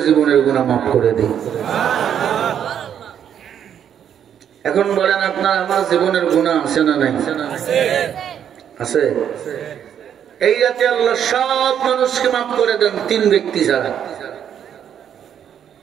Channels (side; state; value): left; quieter; 9.1 dB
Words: জীবনের গুনাহ মাফ করে দেই। এখন বলেন আপনার আমার জীবনের গুনাহ আছে না নাই? আছে। এই রাতে আল্লাহ সব মানুষকে মাফ করে দেন 3 ব্যক্তি ছাড়া।